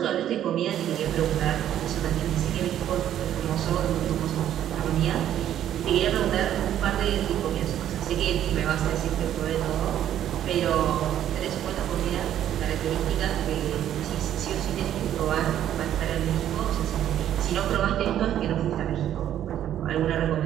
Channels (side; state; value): left; quieter; 11.1 dB